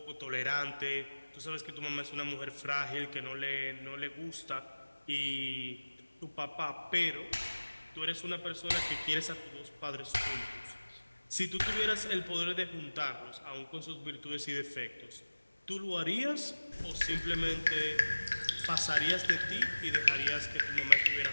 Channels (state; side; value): inverted; both; correlation -1.00